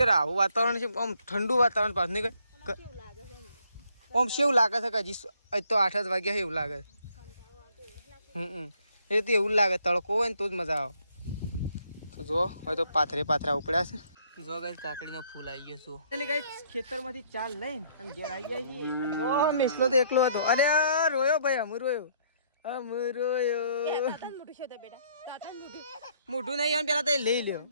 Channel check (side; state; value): both; inverted; correlation -0.66